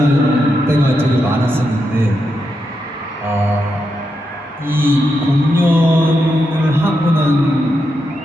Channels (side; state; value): both; normal; correlation 0.85